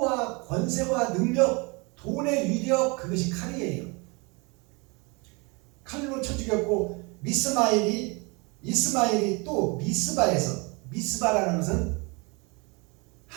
권세와 능력, 돈의 위력, 그것이 칼이에요. 칼로 쳐 죽였고, 이스마엘이 또 미스바에서, 미스바라는 것은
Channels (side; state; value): left; quieter; 29.1 dB